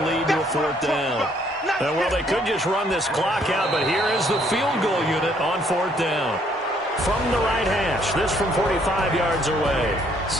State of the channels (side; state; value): both; normal; correlation 0.66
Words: lead to a 4th down. Well, they could just run this clock out, but here is the field goal unit on 4th down. From the right hash, this from 45 yards away.